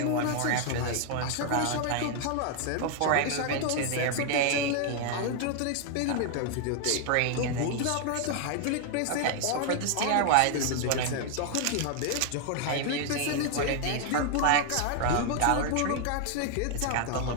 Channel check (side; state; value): both; different; correlation 0.00